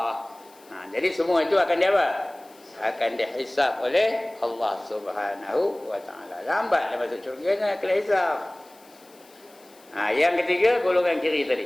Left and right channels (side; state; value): left; noise; hiss, 27 dB below the sound